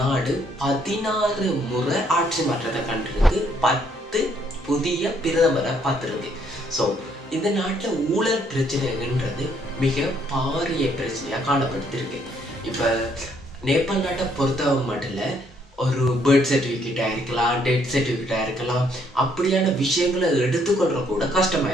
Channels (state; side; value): normal; both; correlation 0.68